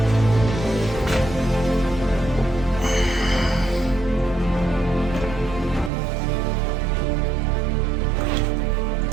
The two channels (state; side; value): drops out; left; at 5.9 s